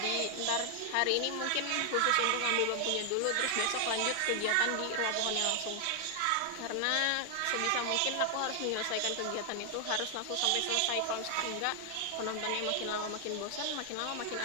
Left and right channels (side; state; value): both; different; correlation 0.00